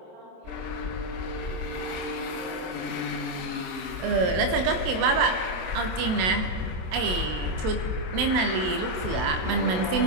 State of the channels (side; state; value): left; late; 27 ms